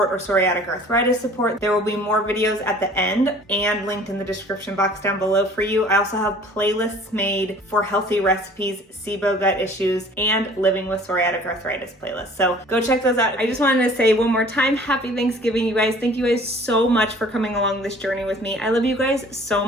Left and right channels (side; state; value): both; normal; correlation 0.50